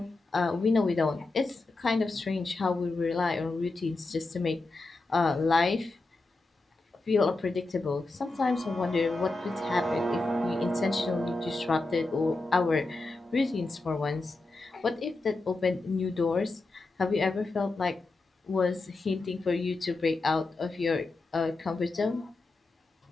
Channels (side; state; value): right; quieter; 3.2 dB